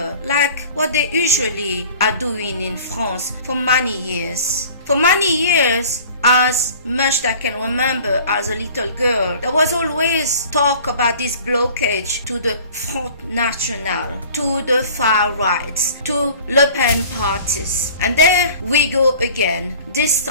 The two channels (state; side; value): inverted; both; correlation -0.47